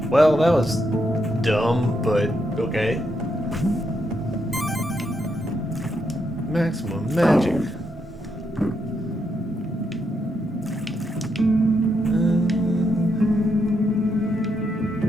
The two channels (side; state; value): both; normal; correlation 0.80